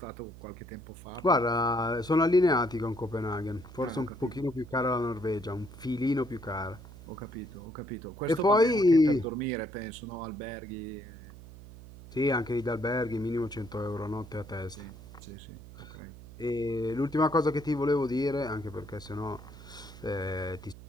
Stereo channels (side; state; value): right; noise; hum, 16 dB below the sound